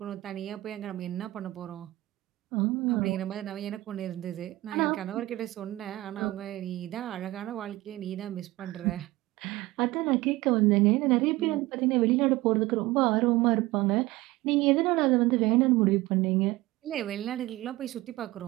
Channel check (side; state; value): left; quieter; 18.7 dB